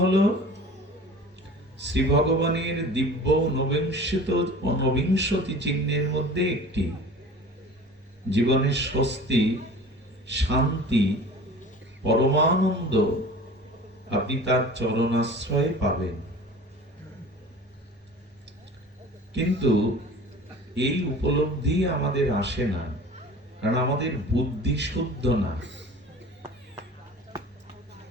হলো শ্রী ভগবানের দিব্য ঊনবিংশতি চিহ্নের মধ্যে একটি। জীবনের স্বস্তি, শান্তি, পরমানন্দ আপনি তার চরণাশ্রয়ে পাবেন। কিন্তু এই উপলব্ধি আমাদের আসে না, কারণ আমাদের বুদ্ধি শুদ্ধ না।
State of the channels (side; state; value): both; normal; correlation 0.41